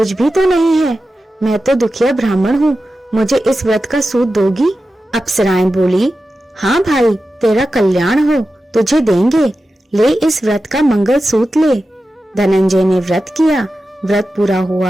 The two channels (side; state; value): both; normal; correlation 0.92